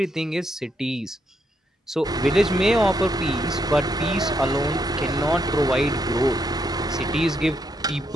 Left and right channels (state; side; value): normal; both; correlation 0.78